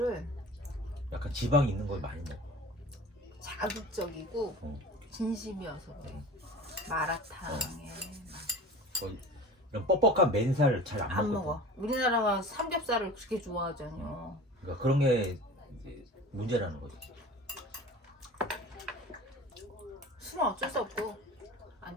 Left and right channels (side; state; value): both; normal; correlation 0.38